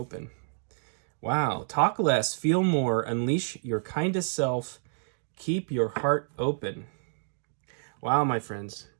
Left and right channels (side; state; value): left; silent; digital silence